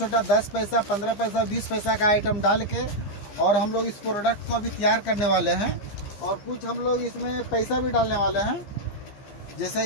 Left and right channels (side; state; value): right; late; 15 ms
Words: 10 पैसा, 15 पैसा, 20 पैसा का आइटम डाल के और हम लोग इस प्रोडक्ट को भी तैयार करने वाले हैं। और कुछ हम लोग इसमें पैसा भी डालने वाले हैं। जैसे